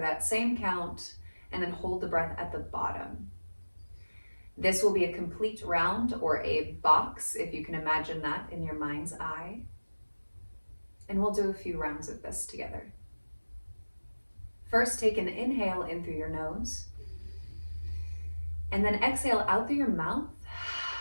that same count, and then hold the breath at the bottom. This will be a complete round, or a box, if you can imagine that in your mind's eye. And we'll do a few rounds of this together. First, take an inhale in through your nose, and then exhale out through your mouth.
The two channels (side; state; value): both; inverted; correlation -1.00